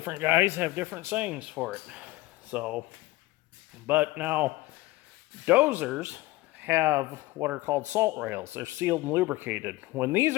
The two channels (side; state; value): right; quieter; 19.1 dB